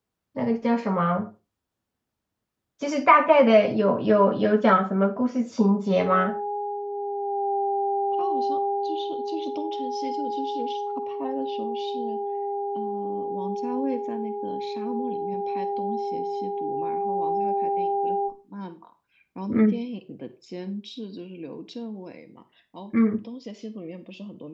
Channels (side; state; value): both; identical; correlation 1.00